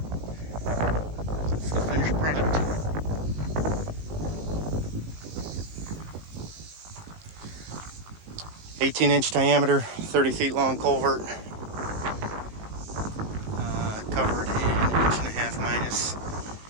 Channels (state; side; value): late; left; 19 ms